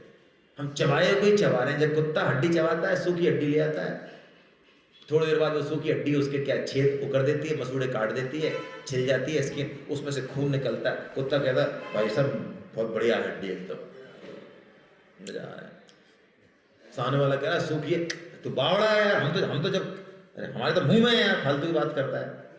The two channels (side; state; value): both; identical; correlation 1.00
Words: हम चबाए कोई चबा रहे हैं। जब कुत्ता हड्डी चबाता है, सूखी हड्डी ले आता है, थोड़ी देर बाद वो सूखी हड्डी उसके क्या छेद वो कर देती है, मसूड़े काट देती है, छिल जाती है स्किन, उसमें से खून निकलता है। कुत्ता कहता है भाई साहब बहुत बढ़िया हड्डी एकदम, मजा आ रहा है। सामने वाला कह रहा है सूखी है, तू बावड़ा है यार, हम तो जब, अरे हमारे तो मुंह में है यार, फालतू की बात करता है।